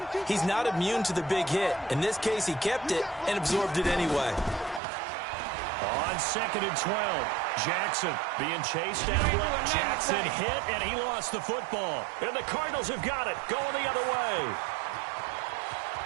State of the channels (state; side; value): drops out; left; at 4.8 s